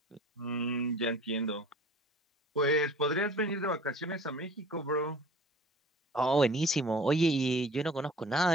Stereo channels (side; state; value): both; normal; correlation 0.46